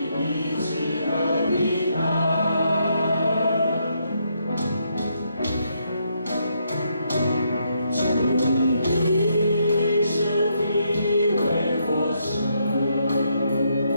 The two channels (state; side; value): inverted; both; correlation -0.76